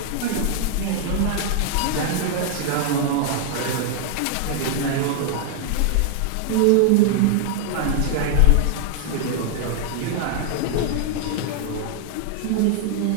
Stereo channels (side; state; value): both; different; correlation 0.00